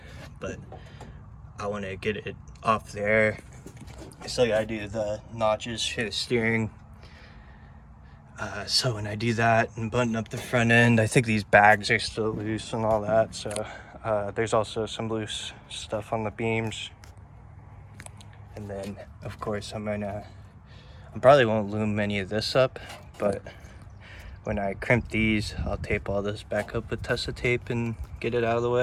but I want to get it off there. I still got to do the notches for the steering. So when I do that and button up the front end, I think these bags are still loose and all that. So There's also some loose stuff on the beams. And then, of course, I probably won't loom any of this up, but when I crimp these, I'll tape all this back up with Tessa tape and get it out of the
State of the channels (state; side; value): identical; both; correlation 1.00